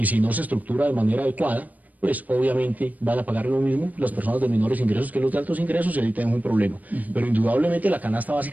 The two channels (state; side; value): late; left; 0.077 ms